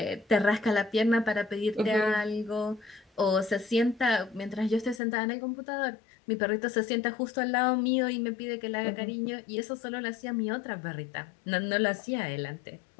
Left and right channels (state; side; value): drops out; right; at 5.0 s